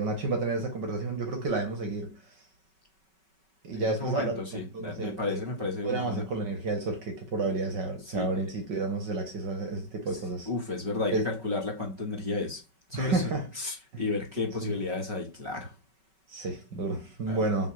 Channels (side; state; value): left; late; 5.3 ms